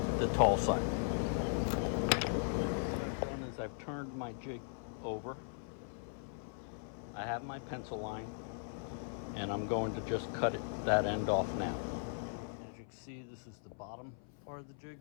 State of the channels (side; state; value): right; silent; 52 dB below the other